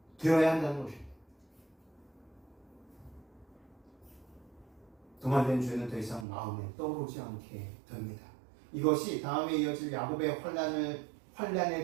되어야 한다는 것입니다. 도말된 죄는 더 이상 마음에 떠오르지 않게 됩니다. 이것이 다음에 이어질 야곱의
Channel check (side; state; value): left; drops out; at 6.2 s